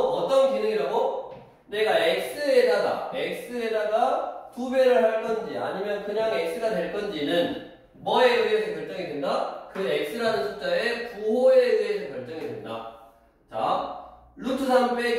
기능이라고? 내가 x에다가 2배를 할 건지 아니면 그냥 x가 될 건지는 뭐에 의해서 결정이 된다? 그 x라는 숫자의 부호에 의해서 결정이 된다. 자, 루트 3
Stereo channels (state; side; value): identical; both; correlation 1.00